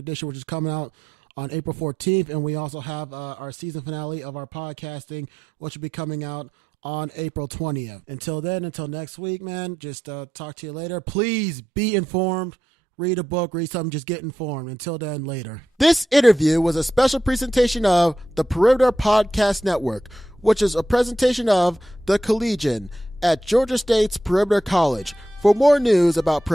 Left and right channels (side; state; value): both; normal; correlation 0.86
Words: which is coming out on April 14th. And we also have our season finale of our podcasting, which will be coming out on April 20th. Until then, until next week, man, just talk to you later. Please be informed. read a book, read something, just get informed. Until then, later. This interview was a special presentation of the Perimeter Podcast Network, which is a presentation of The Collegian at Georgia State's Perimeter College. For more news about